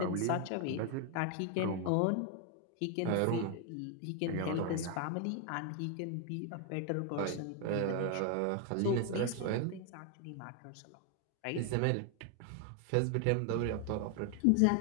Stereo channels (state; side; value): different; both; correlation 0.01